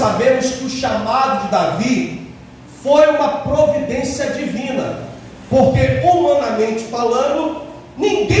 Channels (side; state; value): both; identical; correlation 1.00